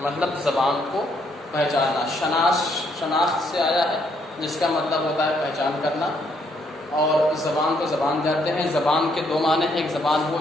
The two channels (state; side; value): normal; both; correlation 0.71